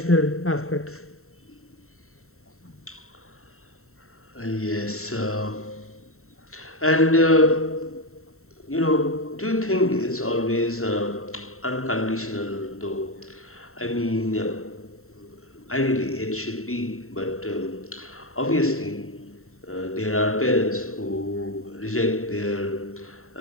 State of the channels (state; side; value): late; right; 0.63 ms